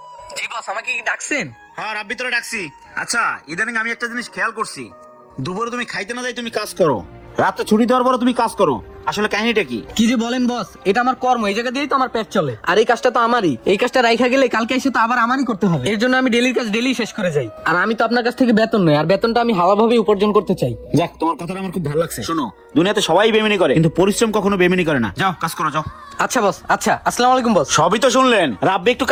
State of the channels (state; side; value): identical; both; correlation 1.00